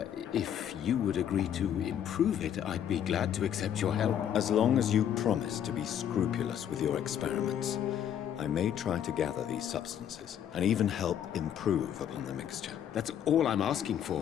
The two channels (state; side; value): quieter; right; 9.6 dB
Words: if you would agree to improve it, I'd be glad to accept your help. As long as you promise to be scrupulous with your experiments, I may try to gather these substances, and even help improve upon the mixture. That's all I'm asking